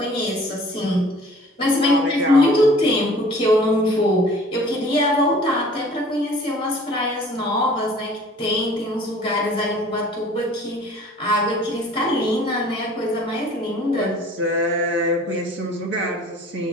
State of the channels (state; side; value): normal; both; correlation 0.50